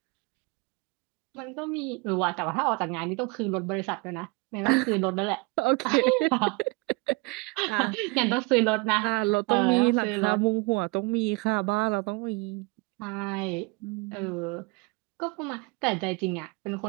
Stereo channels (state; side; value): quieter; left; 27.6 dB